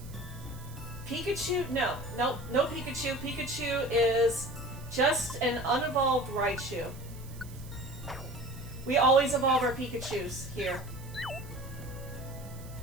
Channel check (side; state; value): right; noise; hiss, 20 dB below the sound